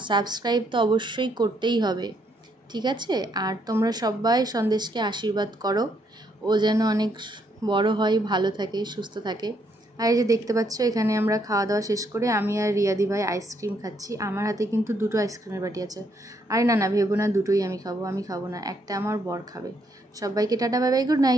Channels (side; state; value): both; normal; correlation 0.73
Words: সাবস্ক্রাইব তো অবশ্যই করতেই হবে, ঠিক আছে? আর তোমরা সবাই সন্দেশকে আশীর্বাদ করো, ও যেন অনেক বড় হয়, ভালো থাকে, সুস্থ থাকে। আর এই যে দেখতে পাচ্ছ এখানে আমরা খাওয়া দাওয়া শেষ করে আমি আর রিয়াদি ভাই আইসক্রিম খাচ্ছি। আমার হাতে কিন্তু দুটো আইসক্রিমের বাটি আছে। আরে না না, ভেবো না দুটোই আমি খাবো না, একটা আমার বর খাবে। সবাইকে tata, bye bye, good